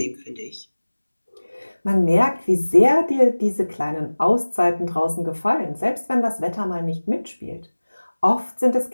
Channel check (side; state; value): both; inverted; correlation -1.00